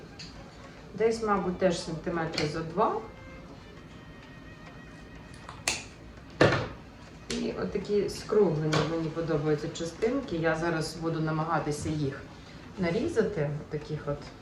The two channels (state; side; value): identical; both; correlation 1.00